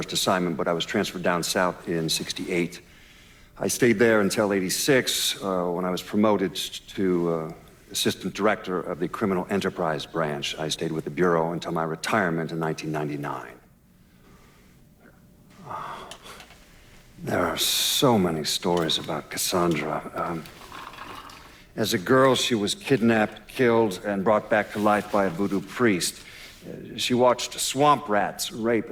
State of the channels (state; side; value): identical; both; correlation 1.00